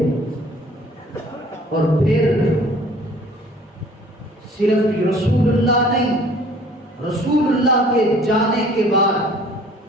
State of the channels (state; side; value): normal; both; correlation 0.53